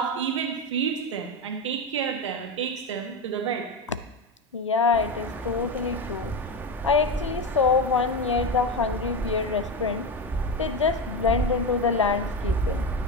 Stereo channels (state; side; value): normal; both; correlation 0.16